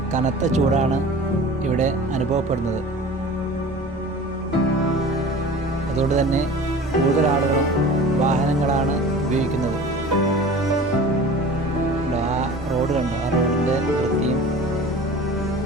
കനത്ത ചൂടാണ് ഇവിടെ അനുഭവപ്പെടുന്നത്. അതുകൊണ്ട് തന്നെ കൂടുതൽ ആളുകളും വാഹനങ്ങളാണ് ഉപയോഗിക്കുന്നത്. ആ റോഡ് കണ്ടോ, ആ റോഡിൻ്റെ വൃത്തിയും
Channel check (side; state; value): both; normal; correlation 0.40